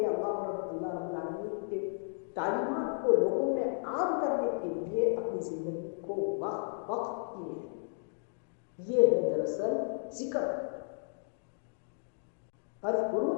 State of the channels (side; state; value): right; silent; digital silence